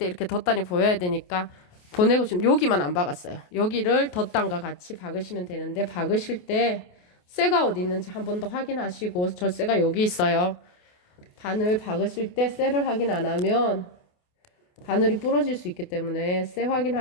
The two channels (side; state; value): right; late; 28 ms